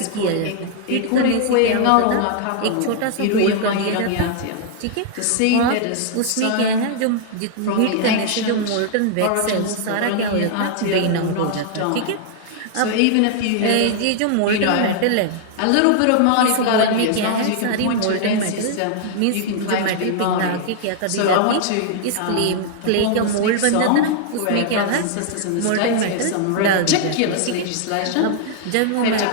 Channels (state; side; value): different; both; correlation -0.01